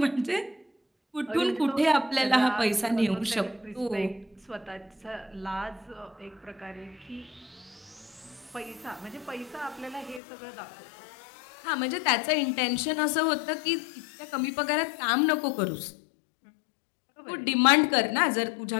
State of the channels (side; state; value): right; drops out; at 10.2 s